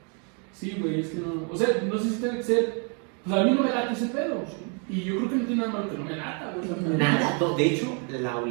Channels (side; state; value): left; quieter; 38.7 dB